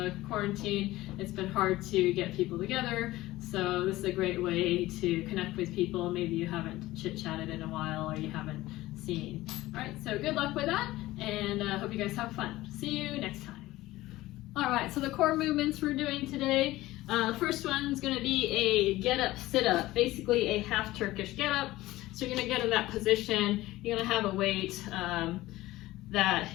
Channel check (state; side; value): quieter; right; 17.4 dB